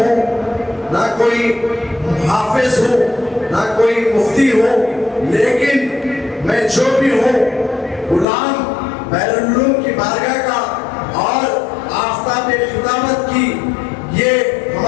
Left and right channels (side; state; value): right; drops out; at 8.2 s